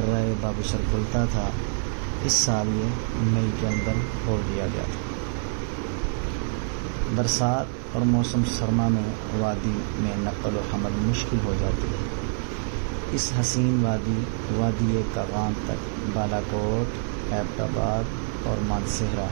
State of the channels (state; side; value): silent; left; 61 dB below the other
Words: بابوسر کھلتا تھا، اس سال یہ مئی کے اندر کھول دیا گیا تھا۔ برسات اور موسم سرما میں وادی میں نقل و حمل مشکل ہو جاتی ہے۔ اس حسین وادی کاغان تک بالاکوٹ، ایبٹ آباد اور مانسہرہ